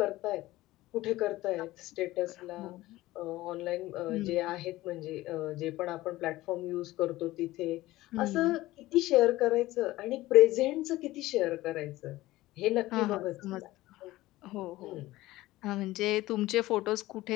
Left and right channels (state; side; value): quieter; right; 17.4 dB